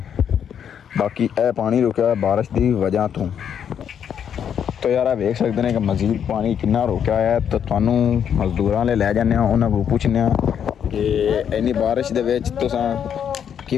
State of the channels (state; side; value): quieter; right; 8.4 dB